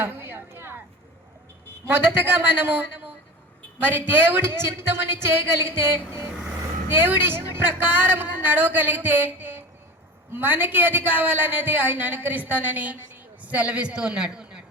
మొదటగా మనము మరి దేవుడి చిత్తముని చేయగలిగితే, దేవుడి ఇష్ట ప్రకారం నడవగలిగితే మనకి ఏది కావాలనేది ఆయన అనుకరిస్తానని సెలవిస్తూ ఉన్నాడు.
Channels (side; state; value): both; normal; correlation 0.32